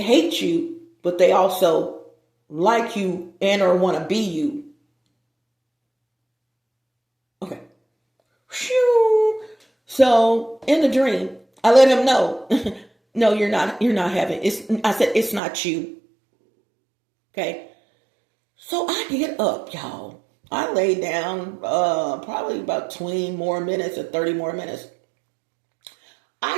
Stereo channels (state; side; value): drops out; left; at 15.4 s